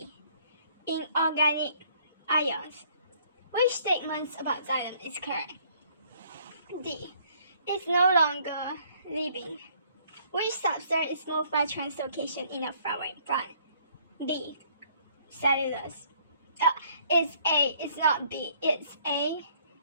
Inorganic ions. Which statements about xylem is correct? D. It's no longer living. Which substrate is moved by translocation in a flowering plant? B. Cellulose. It's A. It's not B. It's A.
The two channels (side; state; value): both; inverted; correlation -0.62